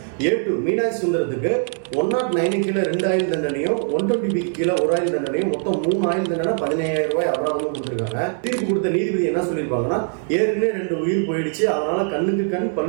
A2 மீனாட்சி சுந்தரத்துக்கு 109 கீழே 2 ஆயுள் தண்டனையும் 120B கீழே 1 ஆயுள் தண்டனையும் மொத்தம் 3 ஆயுள் தண்டனை 15,000 ரூபாய் அபராதமும் கொடுத்துருக்காங்க. தீர்ப்பு கொடுத்த நீதிபதி என்ன சொல்லியிருப்பாங்கன்னா, ஏற்கனவே 2 உயிர் போயிடுச்சு, அதனால கண்ணுக்கு கண்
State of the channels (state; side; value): silent; left; 58 dB below the other